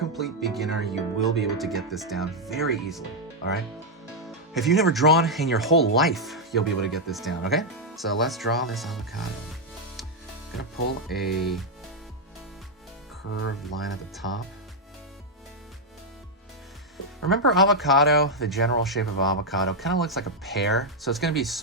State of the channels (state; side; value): normal; both; correlation -0.01